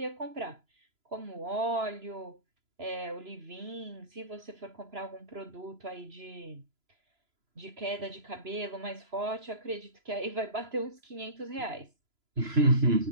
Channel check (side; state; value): left; late; 3.0 ms